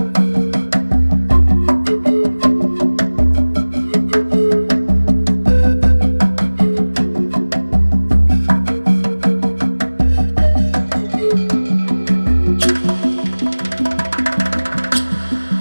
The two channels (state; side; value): inverted; both; correlation -1.00